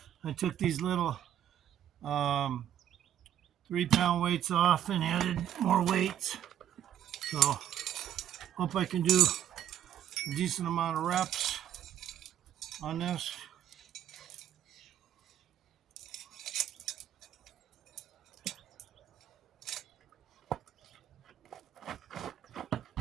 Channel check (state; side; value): quieter; left; 10.7 dB